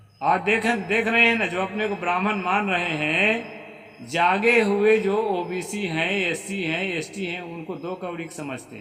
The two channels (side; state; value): both; identical; correlation 1.00